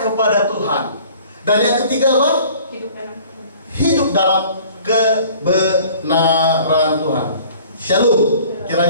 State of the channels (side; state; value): both; inverted; correlation -0.51